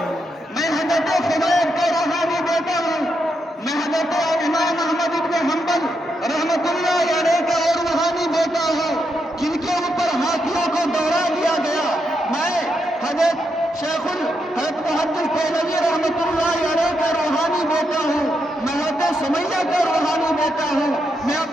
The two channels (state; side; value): normal; both; correlation 0.82